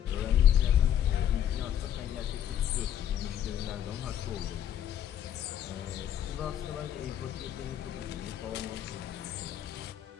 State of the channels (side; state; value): right; quieter; 10.2 dB